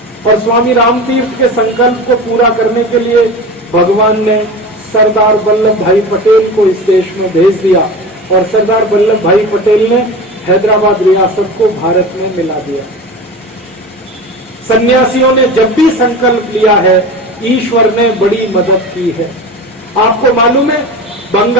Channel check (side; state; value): both; normal; correlation 0.31